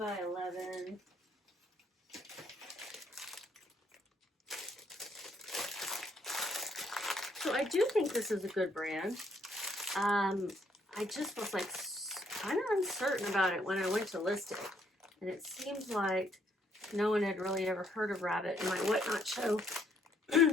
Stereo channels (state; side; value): normal; both; correlation 0.70